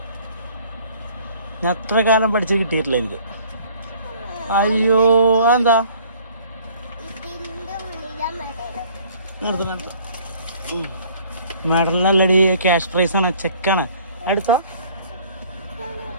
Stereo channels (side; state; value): both; inverted; correlation -0.55